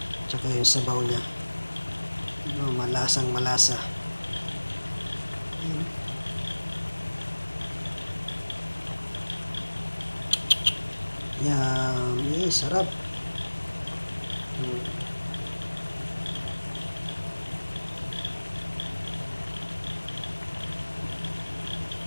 Tsaka yung sabaw niya. Malasang malasa. Ayan. Yummy, sarap.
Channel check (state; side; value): inverted; both; correlation -1.00